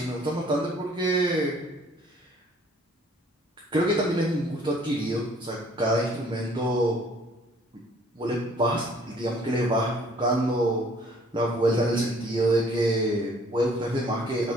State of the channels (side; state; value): both; normal; correlation 0.57